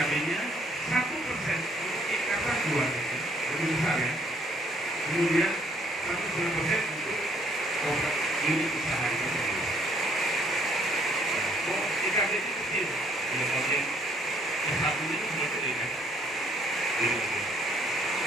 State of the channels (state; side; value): normal; both; correlation 0.65